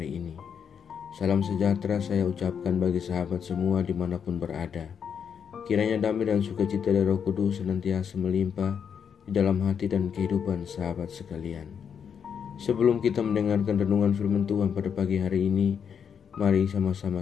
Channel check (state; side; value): quieter; right; 7.3 dB